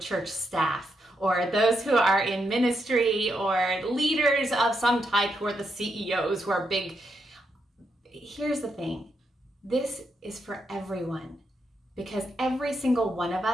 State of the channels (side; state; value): both; normal; correlation 0.81